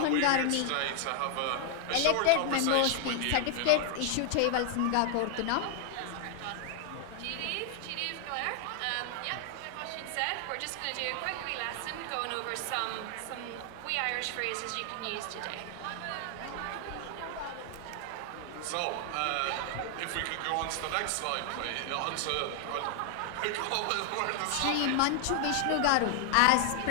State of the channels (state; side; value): different; both; correlation 0.00